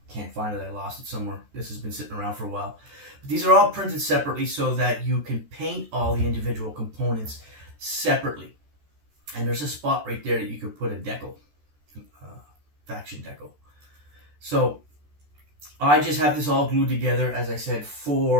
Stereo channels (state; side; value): late; left; 14 ms